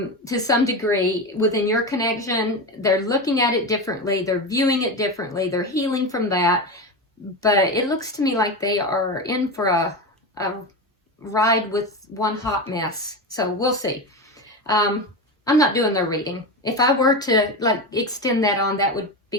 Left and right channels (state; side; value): normal; both; correlation 0.20